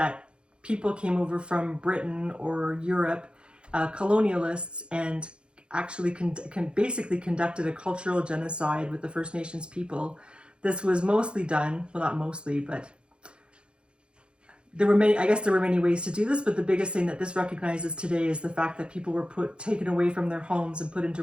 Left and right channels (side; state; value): left; late; 0.055 ms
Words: people came over from Britain or Europe, colonialists, and actually basically conducted a cultural genocide with the First Nations people. This was mostly done, well, not mostly, but there were many ways to do this, but the biggest thing that this recognizes today is the fact that people were taken away from their homes and put into